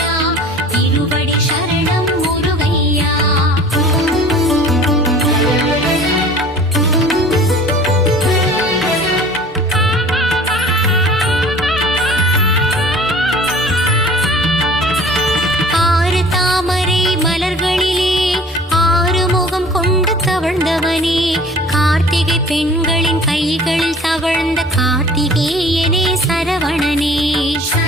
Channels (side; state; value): both; normal; correlation 0.46